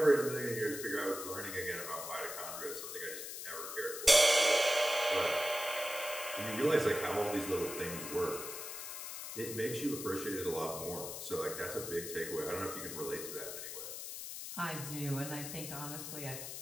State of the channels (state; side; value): noise; left; hiss, 7 dB below the sound